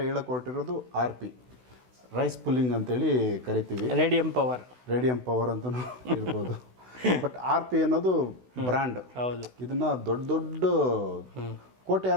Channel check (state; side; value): late; left; 16 ms